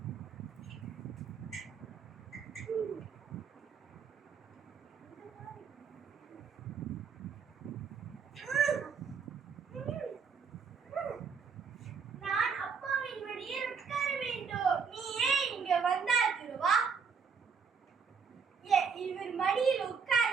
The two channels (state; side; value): quieter; left; 5.9 dB